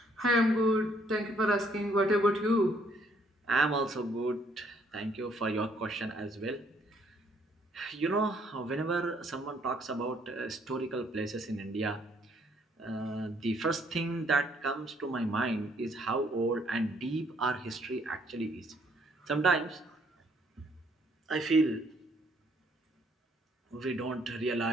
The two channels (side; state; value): both; normal; correlation 0.66